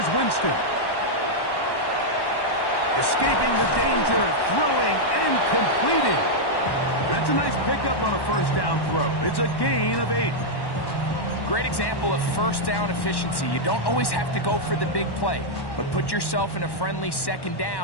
Winston. Escaping the danger, throwing and completing. That's a nice pickup on a first down throw. It's a gain of 8. Great example of first down efficiency. You don't always have to go for the big play, but put yourself in a friendly second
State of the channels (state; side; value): late; right; 1.1 ms